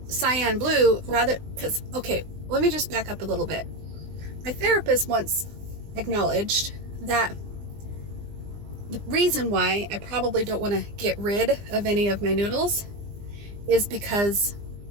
cyan blue, let me just back up a little bit. My therapist once acknowledged that the reason why I probably don't want to get rid of any of my noodles is because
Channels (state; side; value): late; left; 20 ms